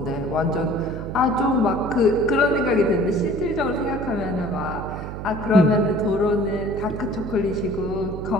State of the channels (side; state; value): right; noise; hum, 8 dB below the sound